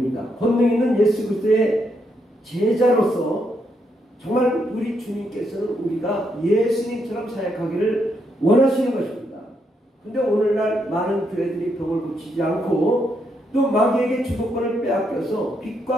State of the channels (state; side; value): normal; both; correlation 0.78